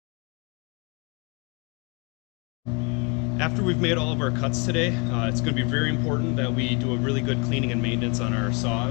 After we've made all of our cuts today, it's going to be very important that we do a really good cleaning and maintenance on our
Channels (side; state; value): right; quieter; 30.9 dB